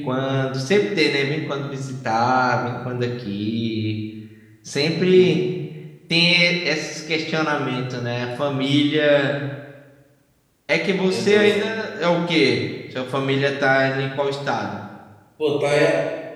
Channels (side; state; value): both; identical; correlation 1.00